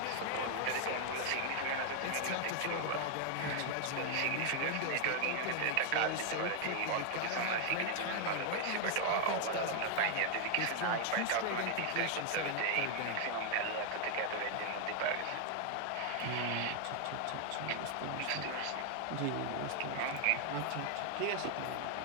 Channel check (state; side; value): different; both; correlation 0.00